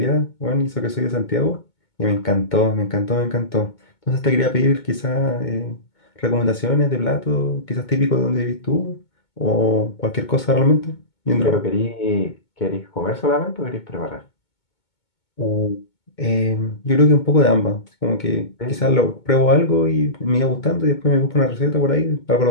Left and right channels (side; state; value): right; late; 2.2 ms